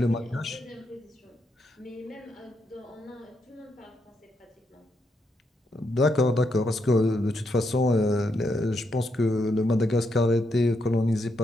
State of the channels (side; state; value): both; normal; correlation 0.79